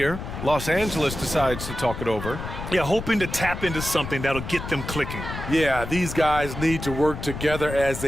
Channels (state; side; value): noise; left; rumble, 8 dB below the sound